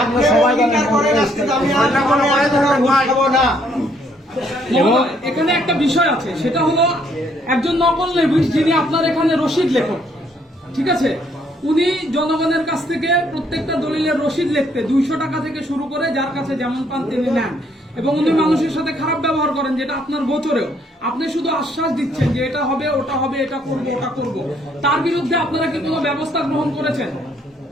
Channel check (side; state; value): both; normal; correlation 0.68